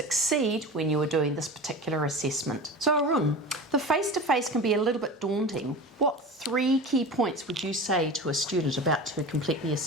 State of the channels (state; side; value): normal; both; correlation 0.32